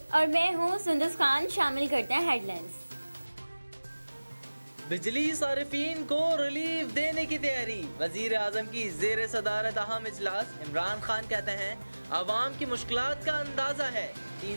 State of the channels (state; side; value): inverted; both; correlation -1.00